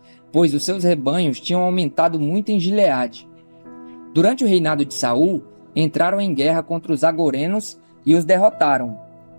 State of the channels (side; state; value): both; inverted; correlation -1.00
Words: pois os seus rebanhos tinham aumentado muito em Gileade. Durante o reinado de Saul, entraram em guerra contra os agorenos e os derrotaram,